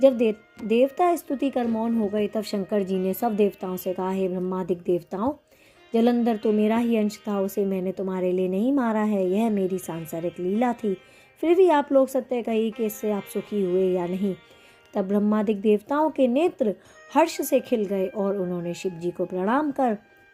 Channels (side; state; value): both; identical; correlation 1.00